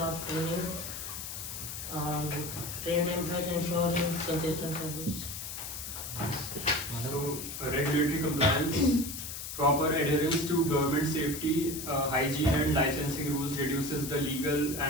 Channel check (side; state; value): left; noise; hiss, 7 dB below the sound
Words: training, trained employees ensuring consistent service. So, regulatory compliance, proper adherence to government safety, hygiene and licensing rules reduces the legal